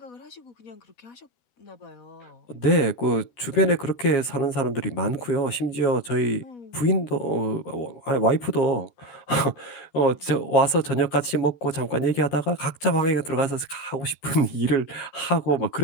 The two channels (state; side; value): late; right; 13 ms